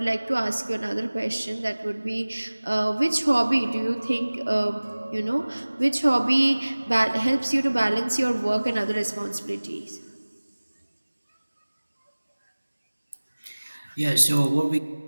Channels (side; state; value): both; inverted; correlation -1.00